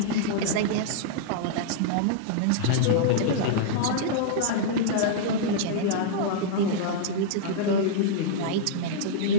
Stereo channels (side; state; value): both; different; correlation -0.02